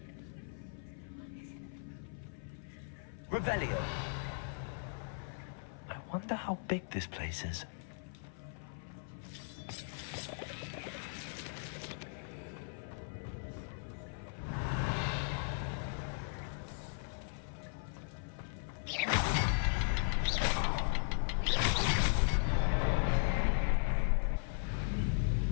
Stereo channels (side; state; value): right; silent; 53 dB below the other